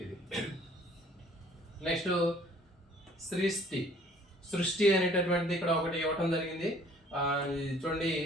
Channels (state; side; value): normal; both; correlation 0.56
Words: ఇది. నెక్స్ట్ సృష్టి అనేటటువంటిది ఇక్కడ ఒకటి ఇవ్వటం జరిగింది. చూడండి,